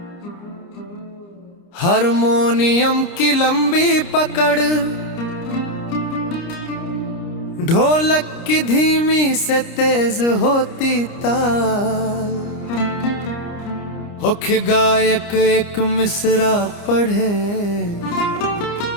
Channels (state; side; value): late; right; 29 ms